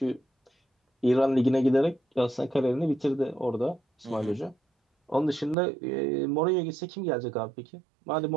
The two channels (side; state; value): left; drops out; at 5.6 s